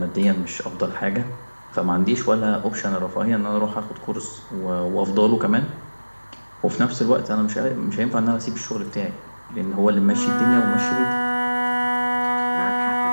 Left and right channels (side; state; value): both; inverted; correlation -1.00